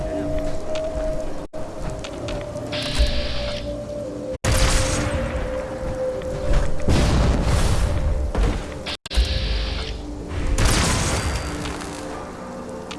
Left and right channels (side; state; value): both; identical; correlation 1.00